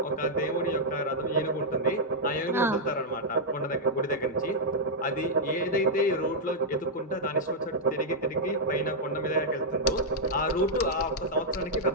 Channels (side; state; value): both; normal; correlation -0.05